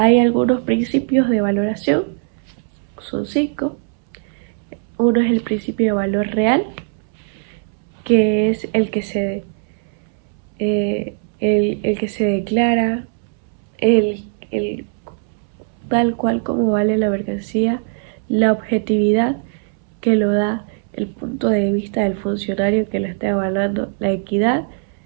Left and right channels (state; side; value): silent; left; 66 dB below the other